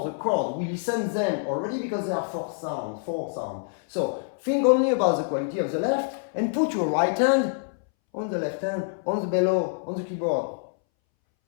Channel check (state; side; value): silent; right; 61 dB below the other